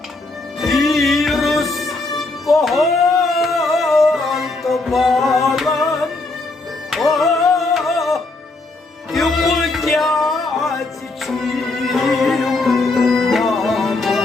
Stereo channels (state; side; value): quieter; right; 3.2 dB